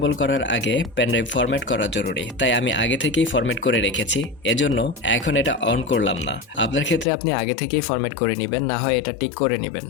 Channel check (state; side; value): drops out; right; at 7.1 s